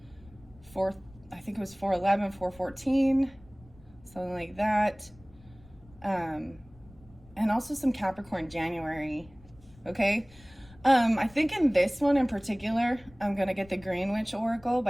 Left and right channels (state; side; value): noise; left; rumble, 25 dB below the sound